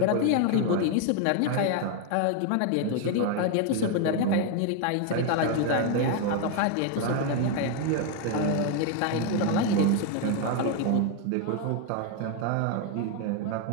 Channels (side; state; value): both; different; correlation 0.01